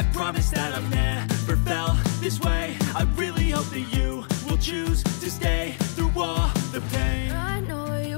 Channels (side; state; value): right; silent; 62 dB below the other